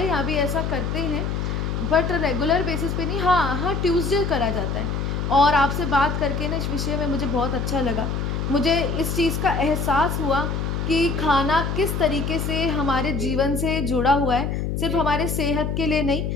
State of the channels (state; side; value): noise; left; hum, 1 dB below the sound